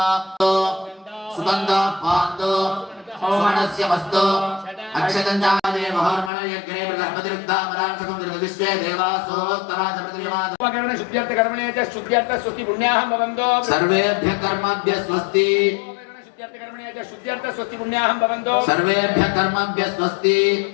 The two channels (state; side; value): drops out; right; at 6.3 s